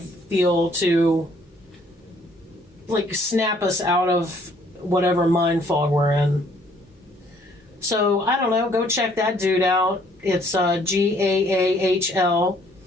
to like snap us out of whatever mind fog we're in. So, I don't know, go check that dude out. It's GAAHL,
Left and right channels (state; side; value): normal; both; correlation 0.62